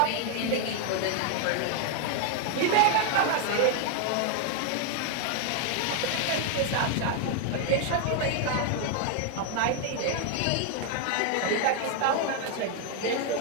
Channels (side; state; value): both; different; correlation 0.01